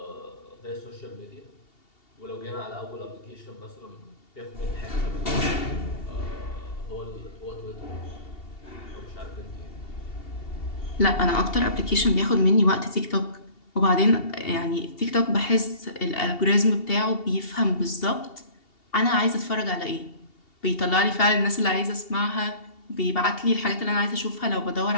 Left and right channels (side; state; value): right; late; 2.7 ms